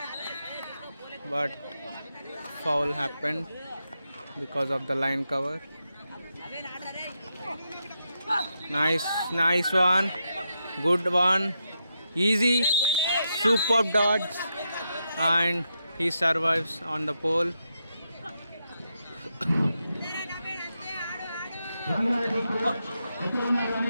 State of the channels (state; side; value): inverted; both; correlation -0.84